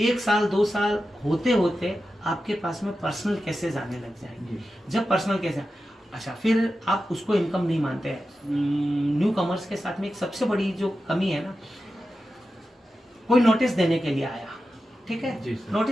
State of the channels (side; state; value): both; normal; correlation 0.92